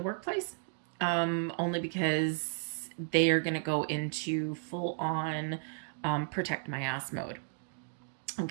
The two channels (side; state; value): left; silent; digital silence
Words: workplace, only because they are going to go into full on protect my ass mode.